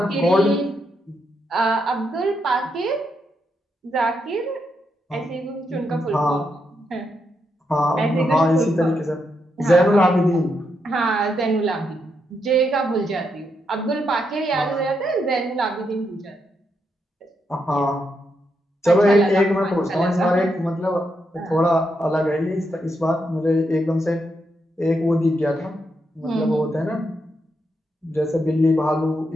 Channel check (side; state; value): both; normal; correlation 0.81